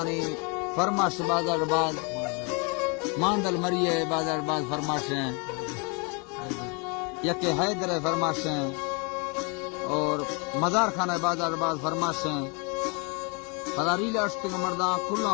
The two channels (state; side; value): quieter; right; 33.6 dB